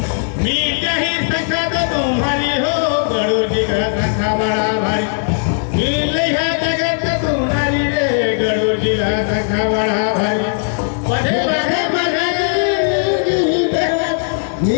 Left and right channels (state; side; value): silent; right; 55 dB below the other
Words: मीट ही सखा तो तुम्हारी हो गरुड़ गिरा सखा बड़ा भारी नीली है जगत तुम्हारी रे गरुड़ गिरा सखा बड़ा भारी पधे बधे बधे